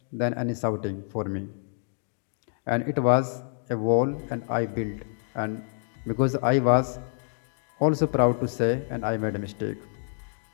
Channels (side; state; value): right; silent; 60 dB below the other